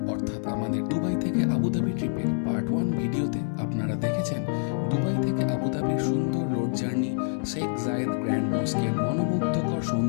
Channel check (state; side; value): silent; right; digital silence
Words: অর্থাৎ আমাদের দুবাই থেকে আবুধাবি ট্রিপের পার্ট 1 ভিডিওতে আপনারা দেখেছেন দুবাই থেকে আবুধাবির সুন্দর রোড জার্নি, শেখ জায়েদ গ্র্যান্ড মস্কের মনোমুগ্ধকর